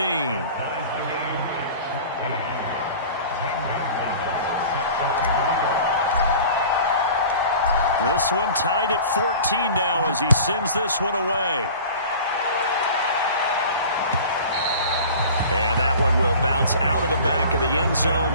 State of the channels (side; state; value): both; inverted; correlation -0.41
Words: This one tied at 14 now as he sends this one away. And that one will bounce out of the back of the end